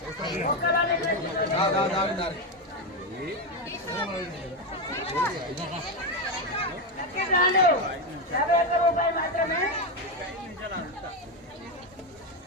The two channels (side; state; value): both; normal; correlation 0.10